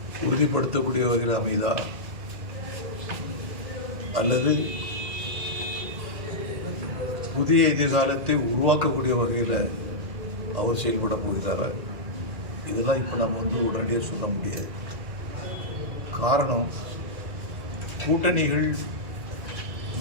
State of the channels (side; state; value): left; late; 2.1 ms